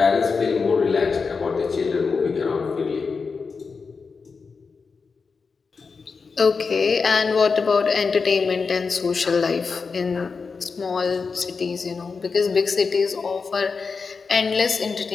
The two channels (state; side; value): quieter; right; 4.9 dB